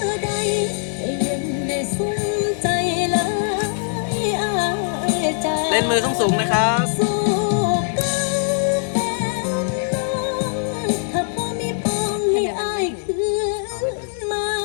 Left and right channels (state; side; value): silent; right; digital silence